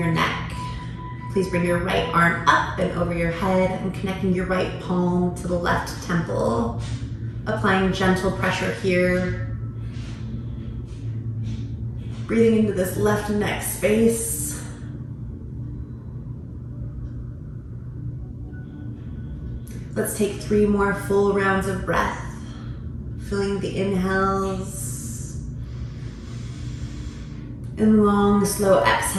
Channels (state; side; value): identical; both; correlation 1.00